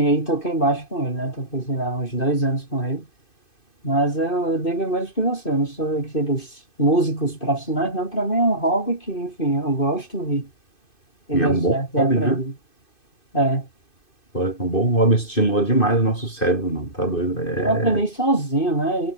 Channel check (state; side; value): late; right; 2.5 ms